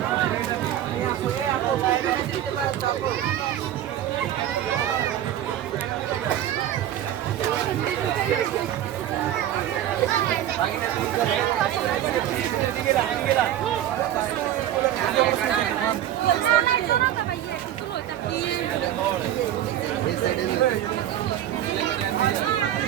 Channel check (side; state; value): left; quieter; 11.8 dB